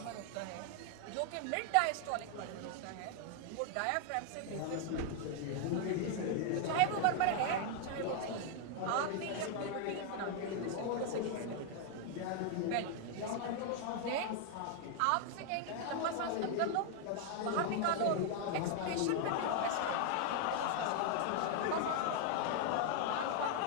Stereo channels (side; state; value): both; different; correlation 0.00